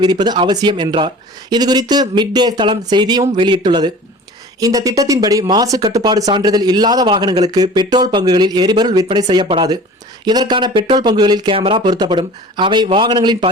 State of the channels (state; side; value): normal; both; correlation 0.42